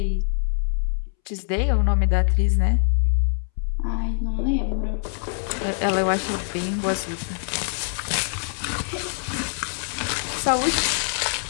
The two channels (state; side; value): silent; right; 63 dB below the other